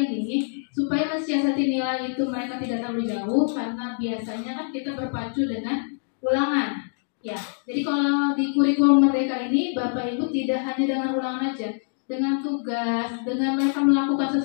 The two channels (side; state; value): right; silent; digital silence